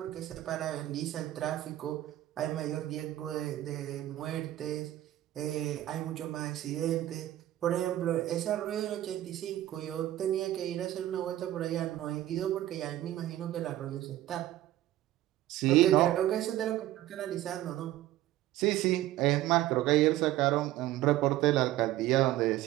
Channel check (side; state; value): left; quieter; 14.3 dB